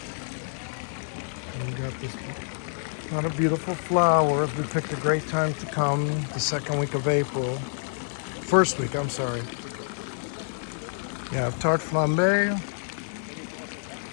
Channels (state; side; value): silent; right; digital silence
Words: And we got this lot of beautiful flowers. We picked a great time to come, the second week of April. First week, I'm sorry. Yeah, tarte flambée.